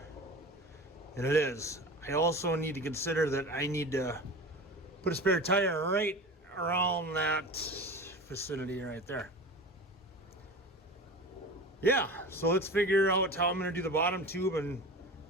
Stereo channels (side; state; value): both; normal; correlation 0.33